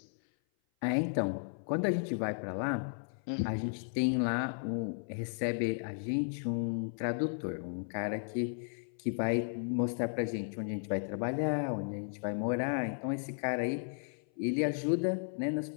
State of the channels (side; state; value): right; silent; 55 dB below the other